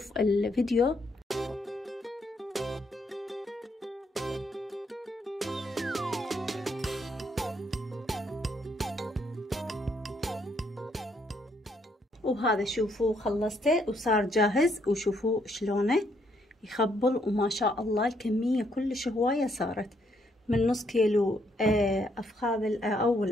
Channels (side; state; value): both; normal; correlation 0.72